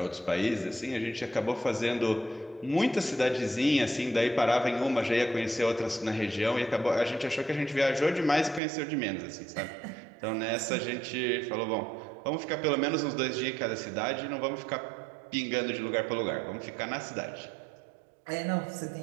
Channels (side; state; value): left; drops out; at 8.6 s